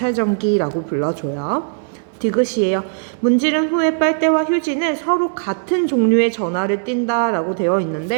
불러줘요. 디귿이에요. 문지른 후에 빨대와 휴지는 서로 같은 종류의 전하를 띈다라고 되어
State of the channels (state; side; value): silent; left; digital silence